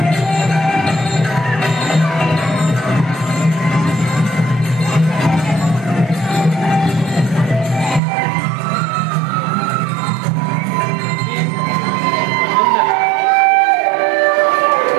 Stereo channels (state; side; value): drops out; left; at 8.0 s